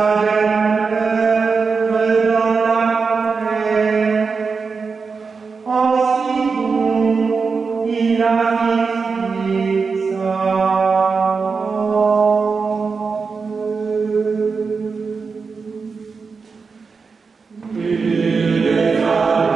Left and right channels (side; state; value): left; quieter; 4.9 dB